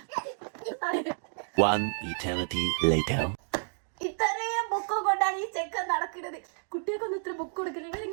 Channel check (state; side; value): silent; left; digital silence